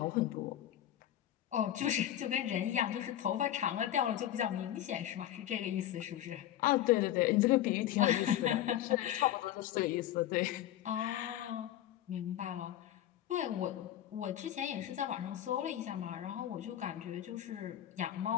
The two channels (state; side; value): quieter; right; 12.2 dB